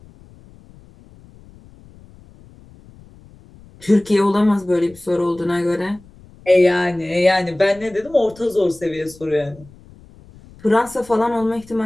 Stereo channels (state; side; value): noise; left; rumble, 24 dB below the sound